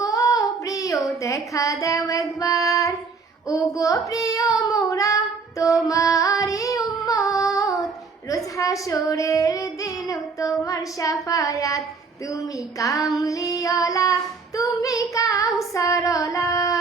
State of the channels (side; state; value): left; quieter; 4.7 dB